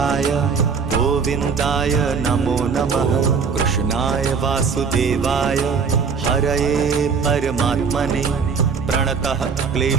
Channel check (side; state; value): left; quieter; 5.6 dB